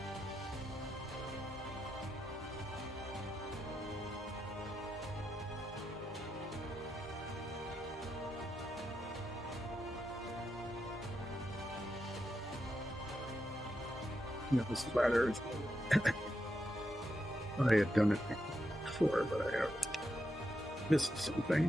The splatter. I had done it before, but I have missed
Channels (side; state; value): both; normal; correlation 0.84